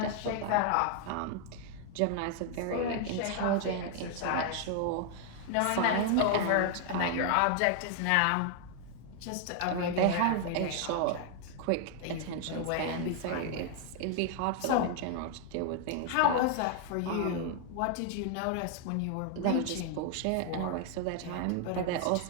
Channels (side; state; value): both; different; correlation 0.00